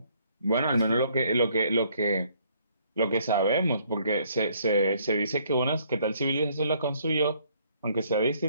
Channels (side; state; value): both; inverted; correlation -0.65